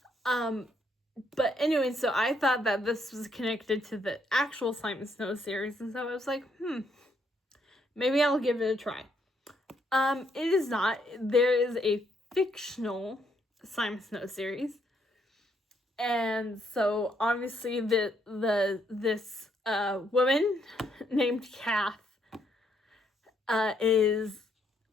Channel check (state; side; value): normal; both; correlation 0.73